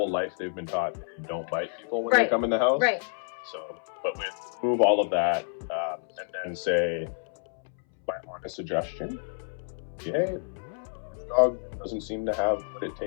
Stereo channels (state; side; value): silent; right; 59 dB below the other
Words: life they've been taught you don't bite people when they come in the house. Right. So, but we remove all of that and then say, my honest suggestion, the dog doesn't seem to have what it